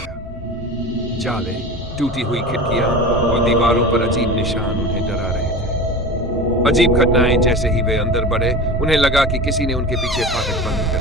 जाले, टूटी हुई खिड़कियां और दीवारों पर अजीब निशान उन्हें डरा रहे थे। अजीब घटनाएं। जैसे ही वे अंदर बढ़े उन्हें लगा कि किसी ने उनके पीछे फाटक बंद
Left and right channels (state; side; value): normal; both; correlation 0.32